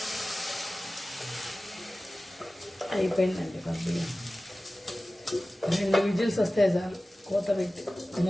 అయిపోయిందండి బియ్యం. 2 విజిల్స్ వస్తే చాలు.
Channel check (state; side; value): normal; both; correlation 0.96